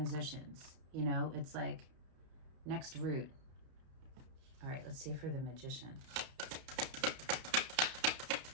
it's like next route. All right, let's see for the Magician.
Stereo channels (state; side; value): late; left; 31 ms